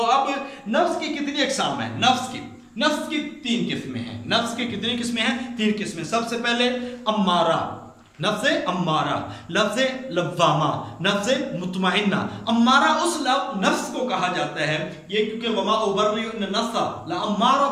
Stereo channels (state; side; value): identical; both; correlation 1.00